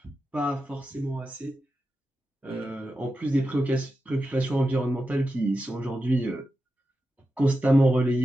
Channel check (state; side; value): normal; both; correlation 0.90